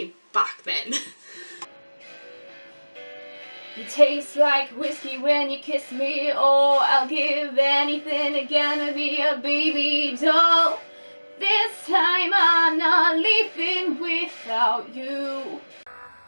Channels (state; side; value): inverted; both; correlation -1.00